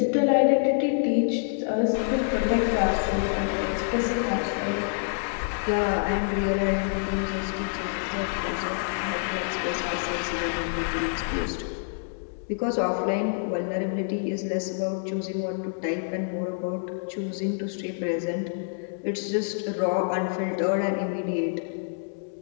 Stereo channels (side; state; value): right; silent; digital silence